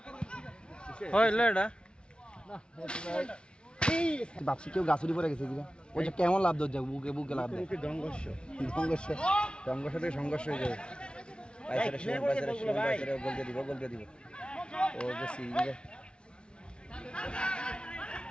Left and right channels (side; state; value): right; late; 0.056 ms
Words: ভাবছি কেউ গাছুরি পরে গেছে কিনা ওইটা কেমন লাভ ধর যাবে বুকে বুকে লাভ দেয় সংঘর্ষ থেকে সংঘর্ষ হয়ে যাবে বলতে দিব ও যে সিরিজে